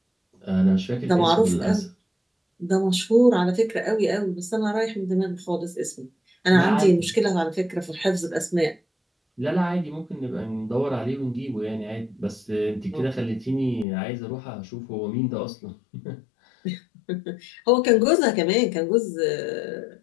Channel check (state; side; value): drops out; right; at 13.9 s